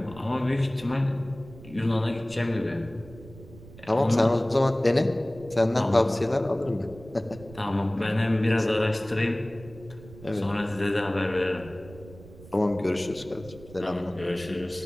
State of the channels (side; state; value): right; noise; rumble, 18 dB below the sound